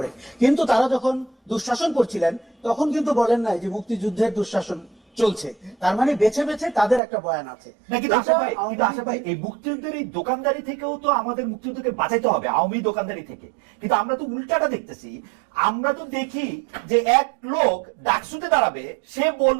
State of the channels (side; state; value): left; drops out; at 7.0 s